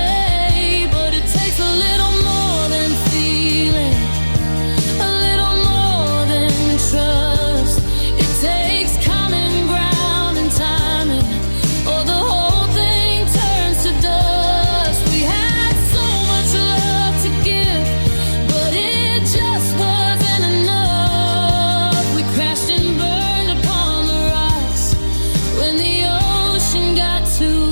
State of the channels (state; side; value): inverted; both; correlation -1.00